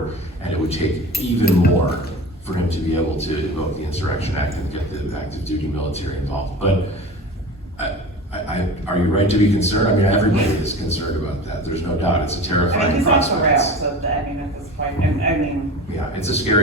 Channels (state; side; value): normal; both; correlation 0.34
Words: and it would take even more for him to be able to invoke the Insurrection Act and get the active duty military involved. But are you right to be concerned? I mean, everybody is concerned about that. There's no doubt. It's a I mean, terrifying he's off the prospect. rails at this point, and I mean, Yeah, it's a